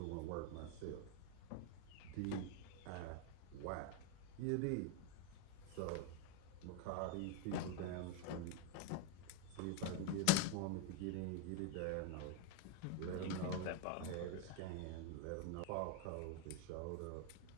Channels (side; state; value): both; different; correlation 0.01